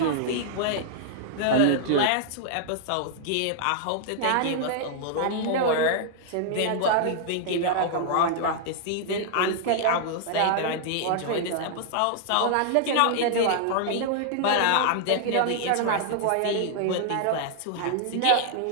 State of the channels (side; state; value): both; different; correlation -0.01